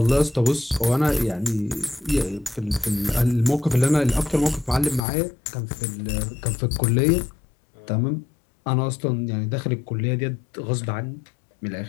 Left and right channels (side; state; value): right; drops out; at 5.0 s